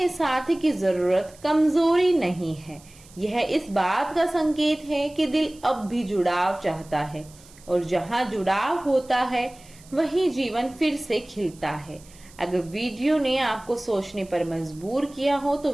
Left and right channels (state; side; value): noise; right; hiss, 24 dB below the sound